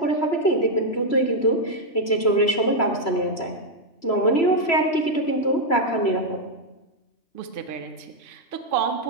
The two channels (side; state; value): right; late; 3.0 ms